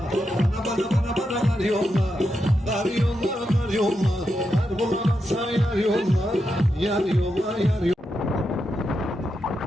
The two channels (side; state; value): both; normal; correlation 0.85